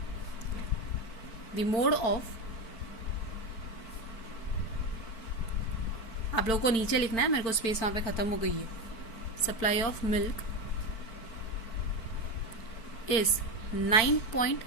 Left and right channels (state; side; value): late; right; 4.5 ms